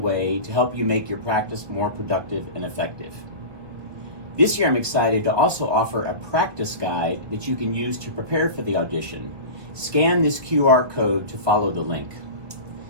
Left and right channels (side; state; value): left; late; 1.7 ms